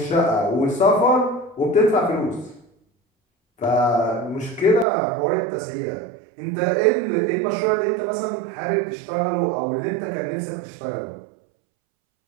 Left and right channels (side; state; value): left; drops out; at 4.9 s